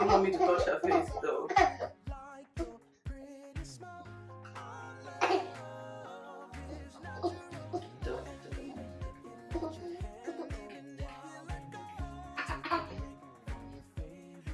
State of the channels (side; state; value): both; identical; correlation 1.00